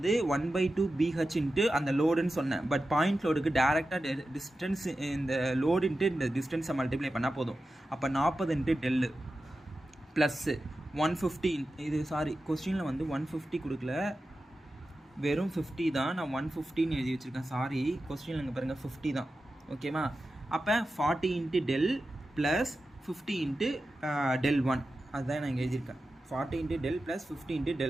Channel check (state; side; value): normal; both; correlation 0.92